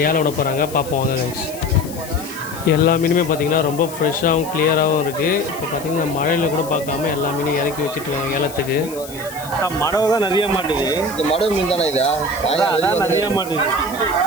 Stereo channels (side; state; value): left; noise; hiss, 15 dB below the sound